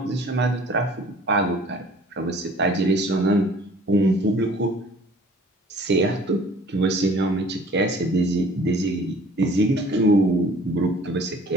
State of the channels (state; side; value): normal; both; correlation 0.51